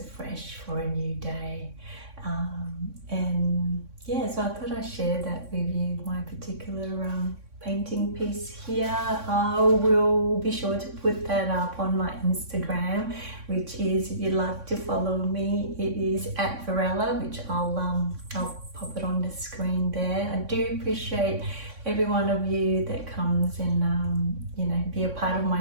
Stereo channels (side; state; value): left; late; 3.6 ms